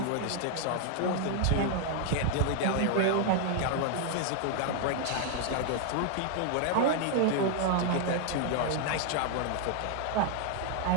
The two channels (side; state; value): both; different; correlation 0.00